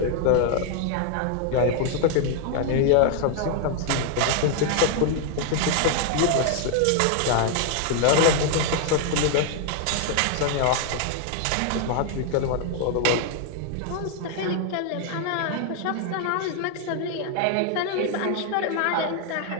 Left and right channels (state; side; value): different; both; correlation 0.00